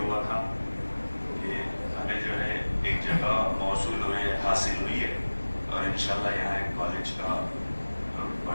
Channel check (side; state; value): both; inverted; correlation -1.00